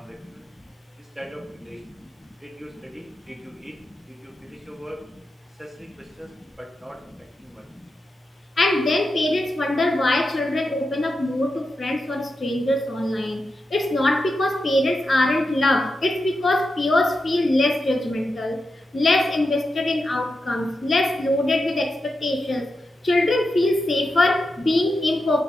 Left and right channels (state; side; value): normal; both; correlation 0.88